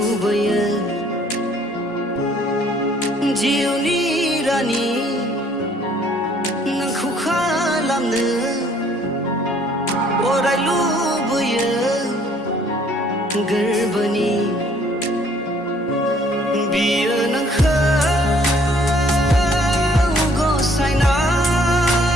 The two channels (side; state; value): both; normal; correlation 0.61